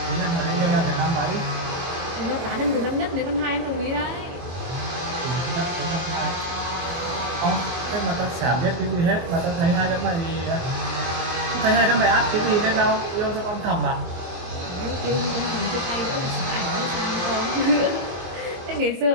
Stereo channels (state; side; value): late; left; 23 ms